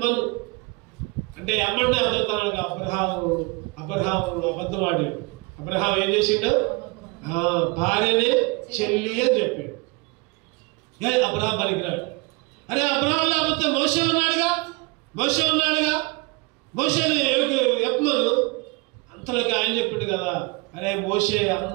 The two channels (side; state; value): left; quieter; 27.1 dB